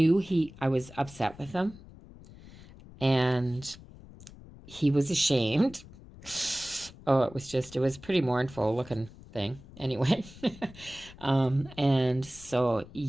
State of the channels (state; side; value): noise; left; rumble, 19 dB below the sound